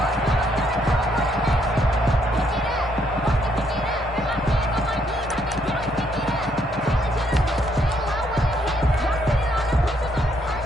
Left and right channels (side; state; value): both; normal; correlation 0.71